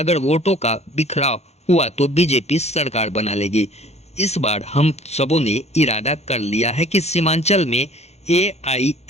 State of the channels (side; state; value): right; late; 0.31 ms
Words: वोटों का बिखराव हुआ तो बीजेपी सरकार बना लेगी। इस बार हम सबों ने इरादा कर लिया है कि सीमांचल में